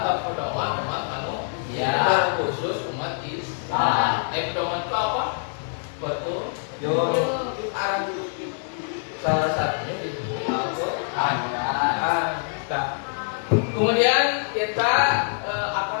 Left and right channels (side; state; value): right; silent; 62 dB below the other